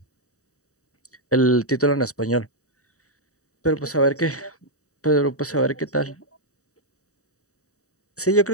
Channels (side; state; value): right; late; 0.65 ms